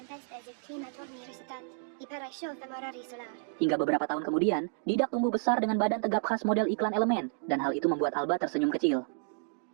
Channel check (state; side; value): silent; left; digital silence